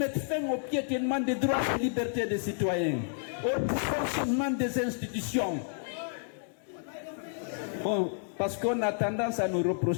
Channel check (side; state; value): right; silent; digital silence